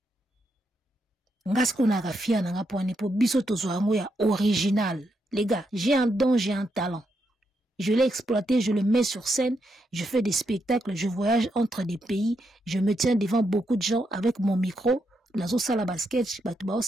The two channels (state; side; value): normal; both; correlation 0.81